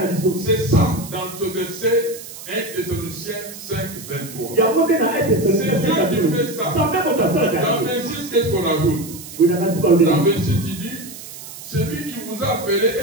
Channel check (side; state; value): right; noise; hiss, 14 dB below the sound